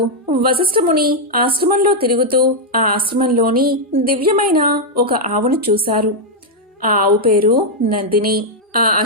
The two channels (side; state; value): both; normal; correlation -0.02